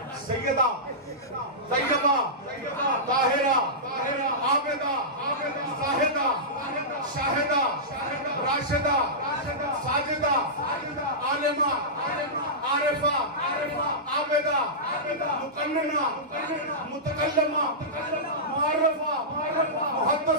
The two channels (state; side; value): normal; both; correlation -0.15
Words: सैयदा, तैयबा, ताहिरा, आबिदा, साहिदा, शाहिदा, राशिदा, साजिदा, आलिमा, आरिफा, आबिदा, मुकन्नना, मुतकल्लिमा, मुअर्रफा,